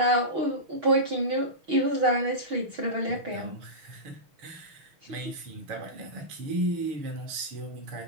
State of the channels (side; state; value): left; late; 6.4 ms